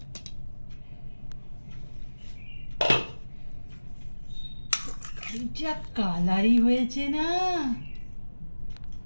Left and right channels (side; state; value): both; inverted; correlation -1.00